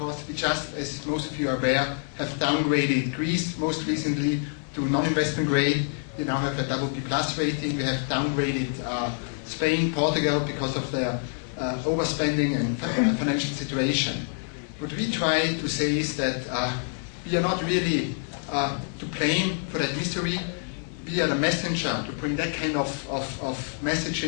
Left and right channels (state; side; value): silent; right; 60 dB below the other